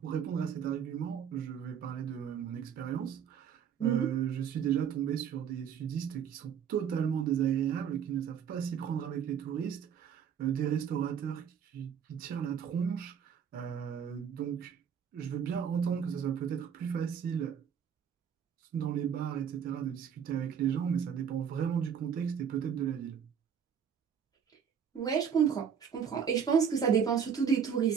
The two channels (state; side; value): quieter; left; 7.8 dB